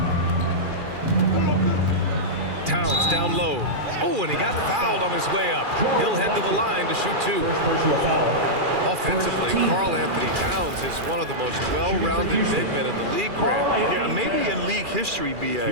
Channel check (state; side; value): late; left; 2.4 ms